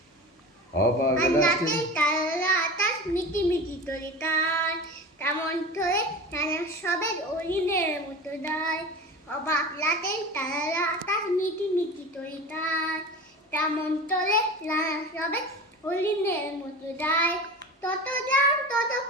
অবাক আকাশ মিটি মিটি তরিকার তেমন ধরে নানা সবের অরিনের মতো দায় অবাক রাতের তারা আকাশ মিটি মিটি তরিকার তেমন ধরে নানা সবের হরিণের মতো যায় তত যান তত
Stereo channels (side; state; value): both; normal; correlation 0.32